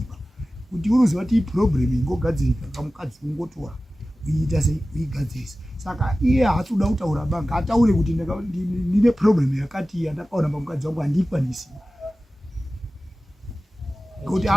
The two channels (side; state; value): both; normal; correlation 0.96